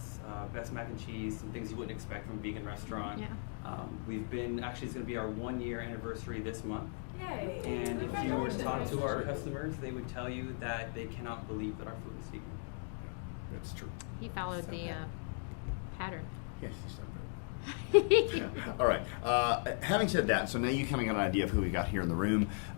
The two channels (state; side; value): silent; right; 53 dB below the other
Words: Best Mac and Cheese, some things you wouldn't expect from a vegan restaurant. Yeah. Actually it's going to be our 1-year anniversary this month. Yay! And if you were to talk to our customers, they would tell you that they cannot believe that our food is vegan. That's true. He followed the pattern. Yes, he's done very well. All right. Having said that, so now you kind of got an idea of who we got here in the room,